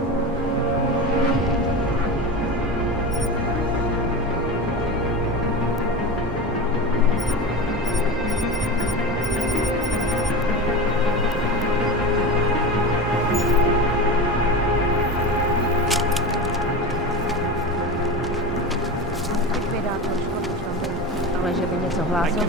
Ale že by něco hlásil,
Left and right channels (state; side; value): normal; both; correlation 0.26